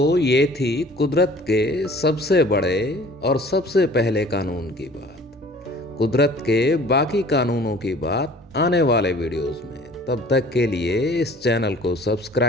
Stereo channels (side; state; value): both; normal; correlation 0.50